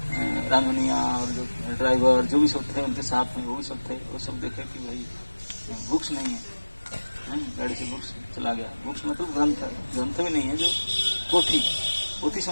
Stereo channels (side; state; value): both; inverted; correlation -1.00